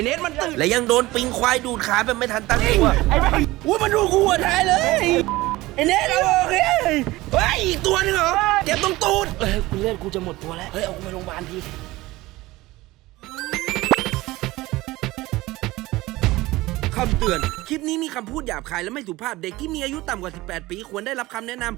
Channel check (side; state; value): left; quieter; 19.1 dB